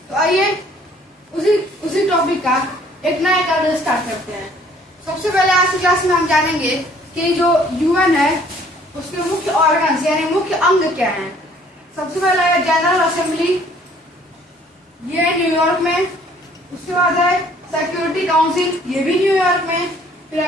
तो आइए उसी टॉपिक का एक नया क्लास स्टार्ट करते हैं। सबसे पहले आज की क्लास में हम जानेंगे कि जो यूएन है उसके मुख्य ऑर्गन्स यानी मुख्य अंग क्या हैं। सबसे पहला है जनरल असेंबली, ये है न्यूयॉर्क में। उसके बाद है सिक्योरिटी काउंसिल, ये भी न्यूयॉर्क में। फिर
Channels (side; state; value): both; normal; correlation 0.58